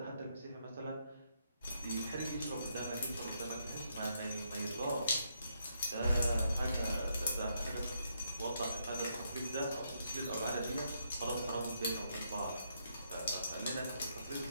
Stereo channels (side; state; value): both; inverted; correlation -0.76